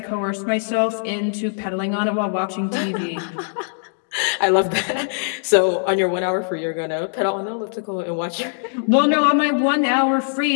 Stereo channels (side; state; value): right; silent; digital silence